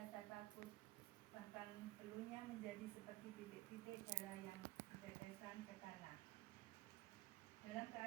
takut, bahkan peluhnya menjadi seperti titik-titik darah yang bertetesan ke tanah. Dalam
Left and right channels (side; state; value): left; quieter; 18.7 dB